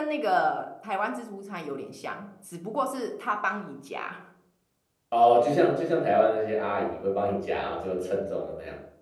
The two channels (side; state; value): both; identical; correlation 1.00